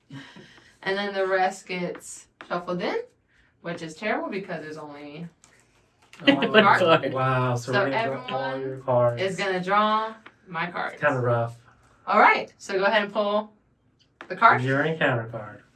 And then the rest gets shuffled in, which is terrible because there's only Oh, my card. wow, so, So we're gonna draw all everyone your cards. is gonna draw my cards. Kind of rough. All right, so go ahead and pull the card. Your encounter card.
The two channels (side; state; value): both; identical; correlation 1.00